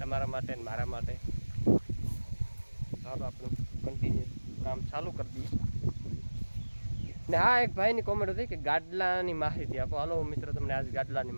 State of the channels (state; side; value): inverted; both; correlation -1.00